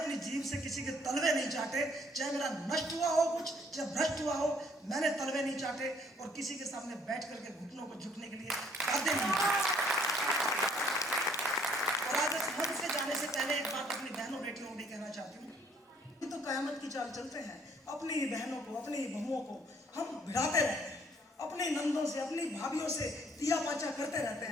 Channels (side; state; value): both; normal; correlation 0.63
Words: जीभ से किसी के तलवे नहीं चाटे। चाहे मेरा नष्ट हुआ हो कुछ, चाहे भ्रष्ट हुआ हो, मैंने तलवे नहीं चाटे और किसी के सामने बैठ करके घुटनों को झुकने के लिए बाध्य नहीं। और आज इस मंच से जाने से पहले एक बात अपनी बहनों बेटियों को भी कहना चाहती हूँ। तो कयामत की चाल चलते हैं, अपनी ही बहनों को, अपनी ही बहुओं को हम भिड़ाते रहते हैं, अपने नंदों से, अपनी भाभियों से तिया पाचा करते रहते